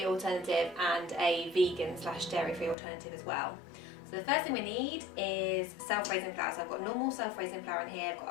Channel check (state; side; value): drops out; right; at 2.8 s